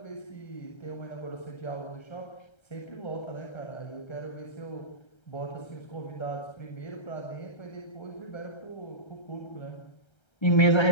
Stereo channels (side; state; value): right; late; 1.3 ms